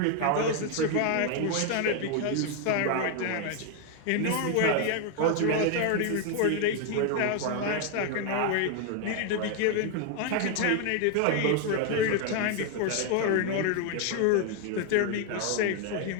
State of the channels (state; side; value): different; both; correlation 0.01